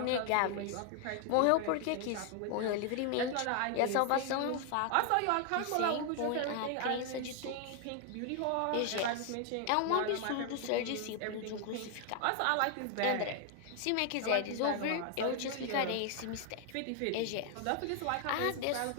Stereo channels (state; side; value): different; both; correlation 0.00